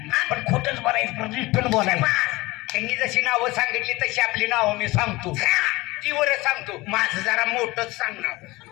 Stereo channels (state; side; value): quieter; right; 21.0 dB